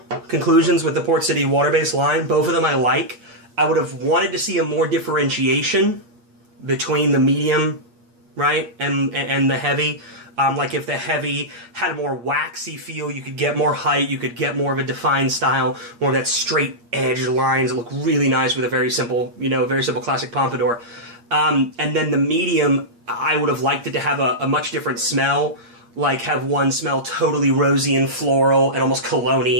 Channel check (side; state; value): left; late; 8.6 ms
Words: conclusions with the Port City water-based line, both of them I like. I would have wanted to see a more differentiation between the medium, right, and the heavy. Like if the heavy had a more waxy feel, you could get more height, you could get more of a defined style, more of that straight edge lines that look really nice with a very simple, very simple classic pompadour. And then the medium, I would have liked it to have a much different smell, like have one smell totally rosy and floral and almost